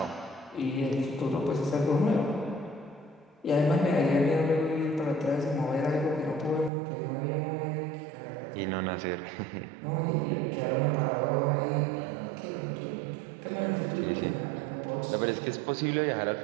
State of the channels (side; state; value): left; drops out; at 6.7 s